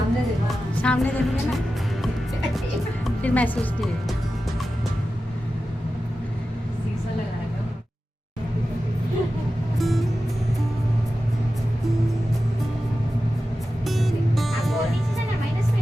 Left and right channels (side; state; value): both; normal; correlation 0.93